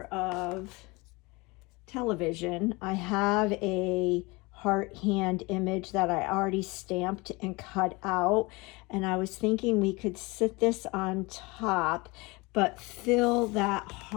of television, I have a heart hand image that I already stamped and cut out, and I was thinking we could sit this on top but fill that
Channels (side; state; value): right; quieter; 24.9 dB